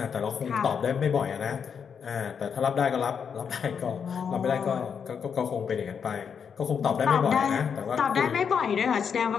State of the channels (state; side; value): quieter; right; 6.9 dB